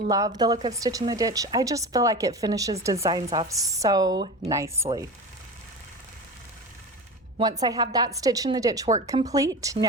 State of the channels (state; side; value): normal; both; correlation 0.28